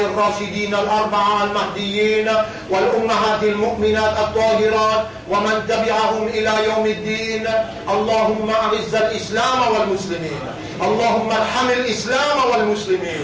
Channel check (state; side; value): identical; both; correlation 1.00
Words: الأربعة المهديين والأمهات المؤمنات الطاهرات ومن تبعهم إلى يوم الدين. اللهم أعز الإسلام والمسلمين، اللهم ارحم الإسلام